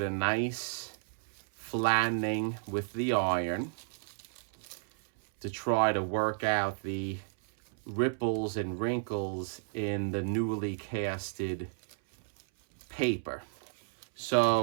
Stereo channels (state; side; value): silent; left; 56 dB below the other